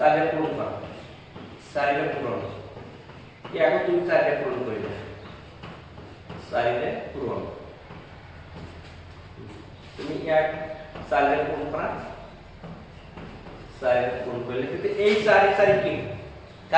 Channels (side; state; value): both; identical; correlation 1.00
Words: ৰে পূৰণ কৰা 4 ৰে পূৰণ ইয়াক তুমি 4 ৰে পূৰণ কৰিবা 4 ৰে পূৰণ তুমি ইয়াক 4 ৰে পূৰণ কৰা 4 ৰে পূৰণ কৰিলে তেতিয়া এই 4 কি